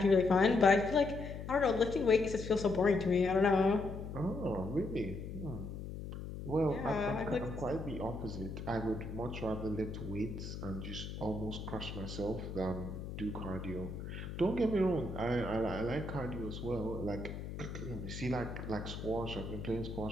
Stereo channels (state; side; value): noise; left; hum, 8 dB below the sound